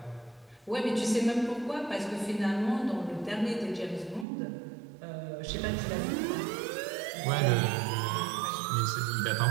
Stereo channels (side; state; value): left; drops out; at 4.2 s